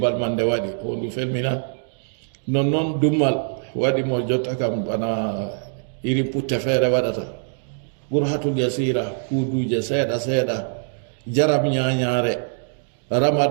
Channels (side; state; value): left; silent; digital silence